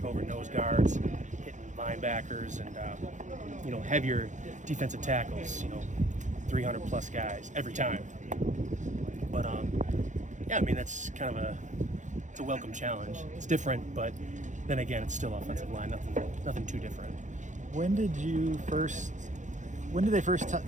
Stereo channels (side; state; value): left; late; 0.35 ms